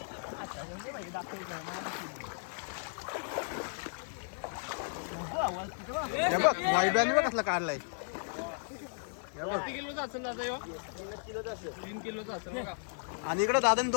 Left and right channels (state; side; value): silent; right; digital silence